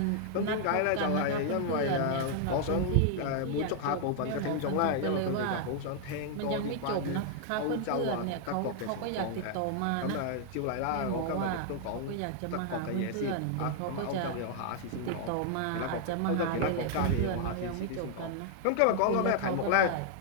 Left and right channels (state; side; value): different; both; correlation 0.00